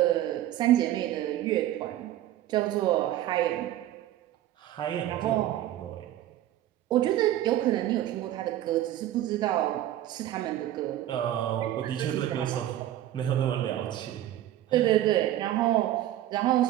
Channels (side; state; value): left; quieter; 13.2 dB